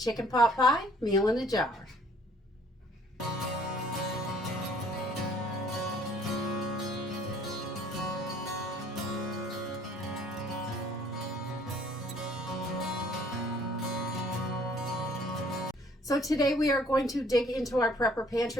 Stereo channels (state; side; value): normal; both; correlation 0.58